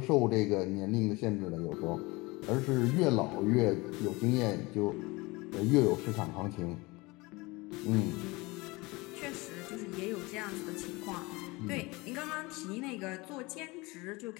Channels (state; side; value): quieter; right; 23.8 dB